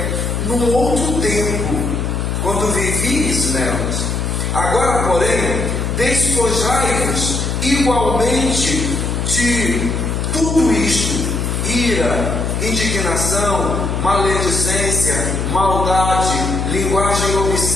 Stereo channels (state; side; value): noise; left; hum, 1 dB below the sound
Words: num outro tempo, quando vivíeis nelas. Agora, porém, despojai-vos igualmente de tudo isto: ira, indignação, maledicência, maldade, linguagem